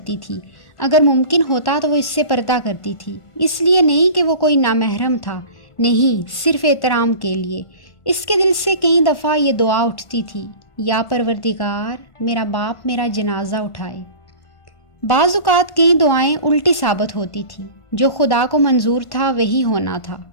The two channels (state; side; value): late; right; 1.1 ms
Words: تھی، اگر ممکن ہوتا تو وہ اس سے پردہ کرتی تھی، اس لیے نہیں کہ وہ کوئی نامحرم تھا، نہیں، صرف احترام کے لیے۔ اس کے دل سے کئی دفعہ یہ دعا اٹھتی تھی، یا پروردگار میرا باپ میرا جنازہ اٹھائے۔ بعض اوقات کئی دعائیں الٹی ثابت ہوتی تھیں، جو خدا کو منظور تھا وہی ہونا تھا۔